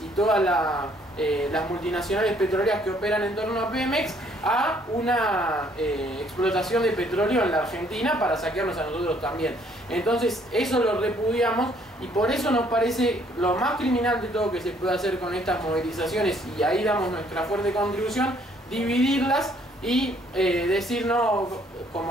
y todas las multinacionales petroleras que operan en torno a Pemex a una explotación de petróleo en la Argentina para saquearnos a nosotros también. Entonces eso lo repudiamos y por eso nos parece lo más criminal de todo que se puede hacer con estas movilizaciones, y ahí damos nuestra fuerte contribución, dividirlas y decir no,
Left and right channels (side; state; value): both; normal; correlation 0.64